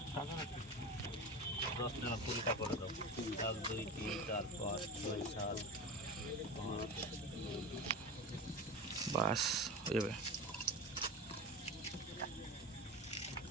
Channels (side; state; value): both; normal; correlation 0.28